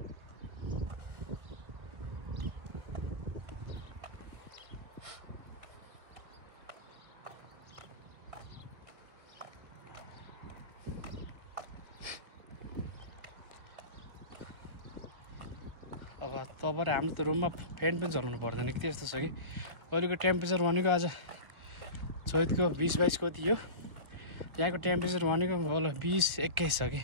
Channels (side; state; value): left; late; 1.4 ms